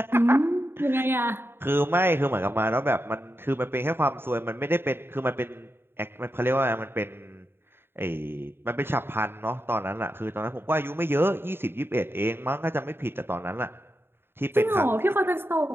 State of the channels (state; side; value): late; left; 0.11 ms